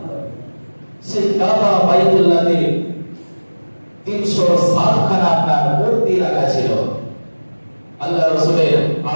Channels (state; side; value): inverted; both; correlation -1.00